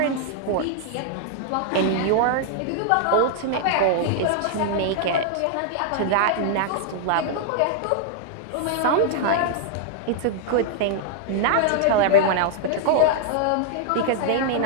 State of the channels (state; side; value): different; both; correlation -0.01